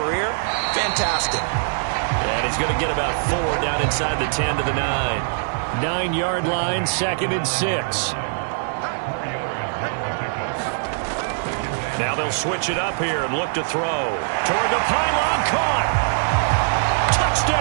fantastic. And he's going to get about 4 down inside the 10 to the 9. 9-yard line, 2nd and 6. Now they'll switch it up here and look to throw. Toward the pylon, caught.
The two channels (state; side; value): silent; left; digital silence